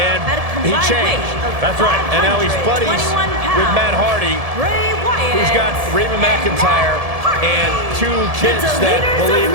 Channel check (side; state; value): left; late; 1.7 ms